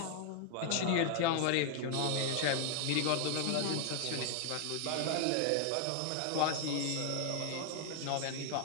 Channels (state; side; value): different; both; correlation 0.00